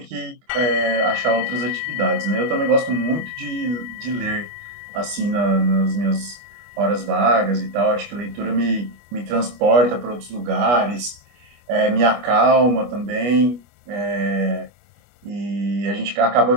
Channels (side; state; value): left; late; 25 ms